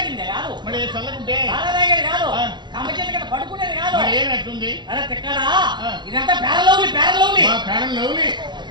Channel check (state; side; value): late; left; 0.21 ms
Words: కాదు తాగేది కాదు కమ్మ చేతి కింద పడుకునేది కాదు అరే తిక్కడా ఇదంతా పేరలౌలి